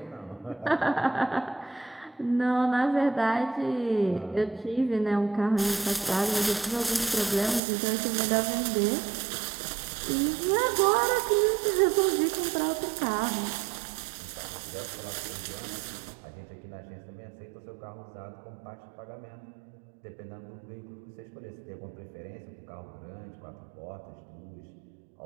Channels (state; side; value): drops out; left; at 7.6 s